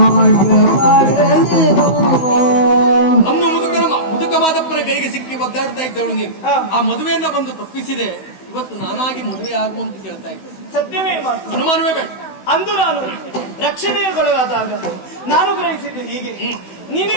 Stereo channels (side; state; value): right; late; 16 ms